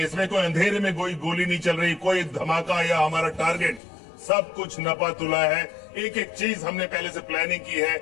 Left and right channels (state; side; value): drops out; right; at 3.8 s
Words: इसमें, कोई अंधेरे में कोई गोली नहीं चल रही, कोई धमाका या हमारा टारगेट, सब कुछ नपा तुला है। एक एक चीज हमने पहले से प्लानिंग की है,